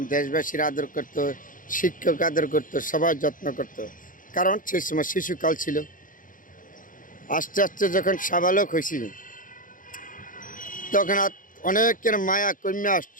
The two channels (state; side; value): late; right; 0.39 ms